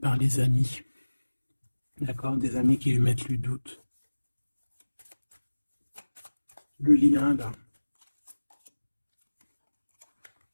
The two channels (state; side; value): inverted; both; correlation -1.00